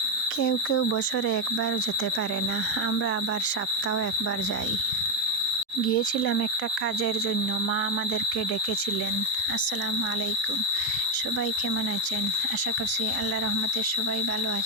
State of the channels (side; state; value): both; normal; correlation 0.07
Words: কেউ কেউ বছরে একবার যেতে পারে না, আমরা আবার সপ্তাহে একবার যাই। গিয়েছিলাম একটা কাজের জন্য, মা আমাদেরকে ডেকেছিলেন। আসসালামু আলাইকুম, সবাই কেমন আছেন? আশা করছি আল্লাহ রহমতে সবাই ভালো